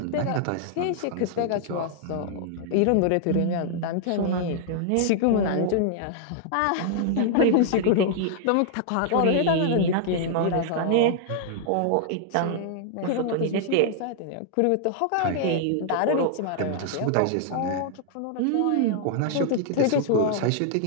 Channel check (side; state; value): both; different; correlation -0.01